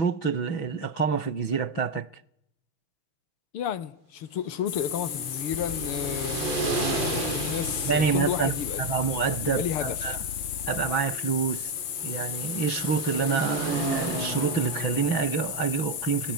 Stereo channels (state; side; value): late; right; 6.9 ms